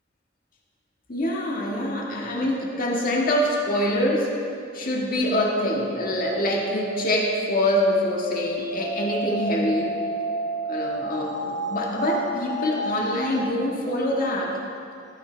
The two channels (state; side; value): normal; both; correlation 0.27